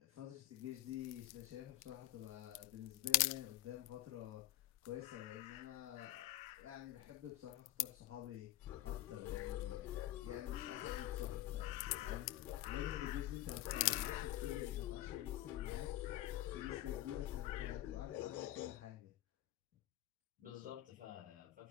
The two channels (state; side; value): quieter; right; 15.5 dB